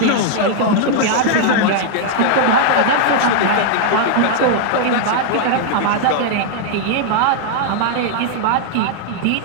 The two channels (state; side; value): different; both; correlation 0.00